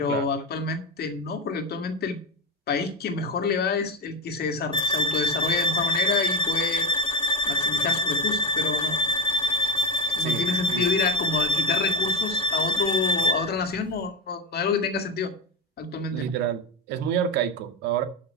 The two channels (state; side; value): normal; both; correlation 0.19